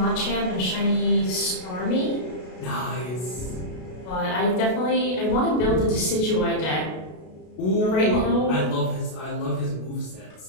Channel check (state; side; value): late; right; 33 ms